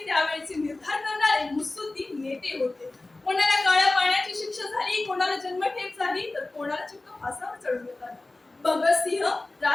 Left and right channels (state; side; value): quieter; right; 3.0 dB